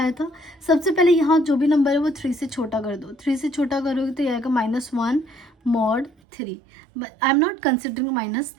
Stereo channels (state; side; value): drops out; left; at 6.1 s